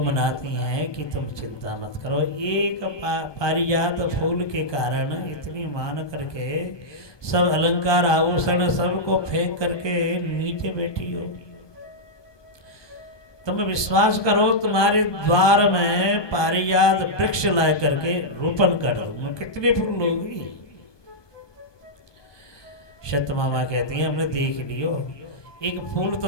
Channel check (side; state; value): right; late; 1.2 ms